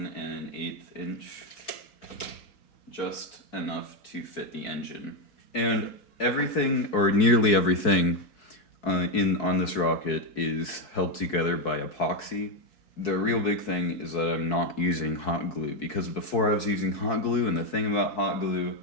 1/8 inch. Just enough to fit the engine. And everything, or nearly everything, on this rocket is held together by epoxy. The real big thing is that I'm not using hot glue, because before I was using hot glue, and the thing about hot glue,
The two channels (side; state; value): right; late; 4.6 ms